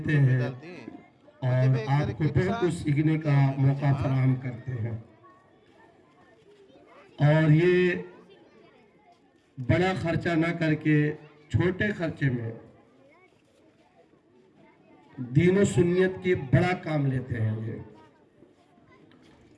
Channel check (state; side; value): identical; both; correlation 1.00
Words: ہیں اور آپ کو بہت کچھ سیکھنے کا موقع فراہم کرتے ہیں. اور یہ بڑا خرچہ نہ کر کے چھوٹے خرچے میں دین و سنیت کی بڑا کام لیتے ہیں. یہ